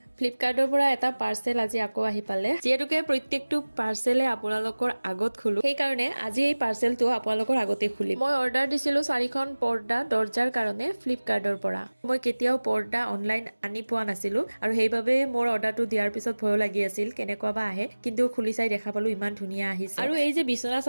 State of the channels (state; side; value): inverted; both; correlation -1.00